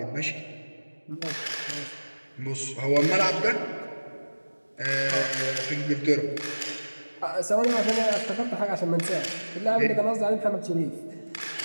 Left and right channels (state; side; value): inverted; both; correlation -1.00